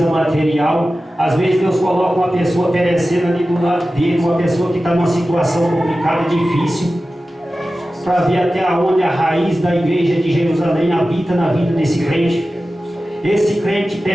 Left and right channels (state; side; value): normal; both; correlation 0.95